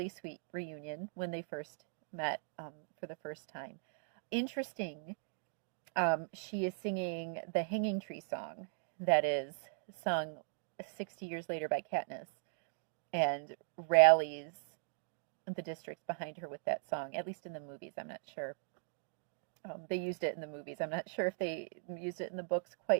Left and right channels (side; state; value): left; silent; digital silence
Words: sweet reunion when they first met for the first time. Interesting, she is singing the Hanging Tree song that is sung 60 years later by Katniss, and rallies the districts behind her with that song, at least in the movies. I'm not sure. They used it in the movies. I'm not sure if they used it in the books